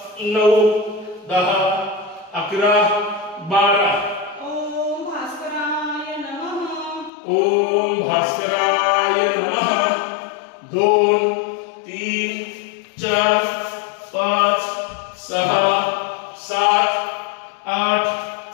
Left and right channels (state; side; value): drops out; right; at 7.1 s